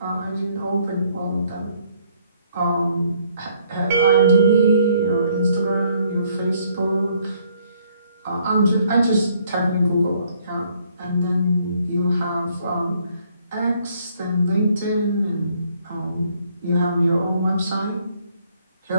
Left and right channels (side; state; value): both; inverted; correlation -0.66